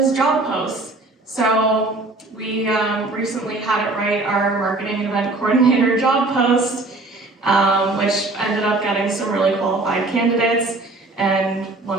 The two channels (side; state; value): left; quieter; 3.1 dB